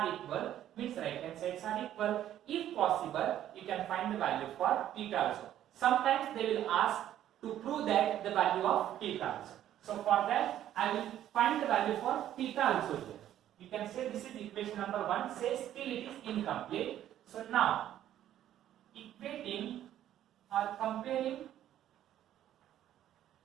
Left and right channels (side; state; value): left; quieter; 11.8 dB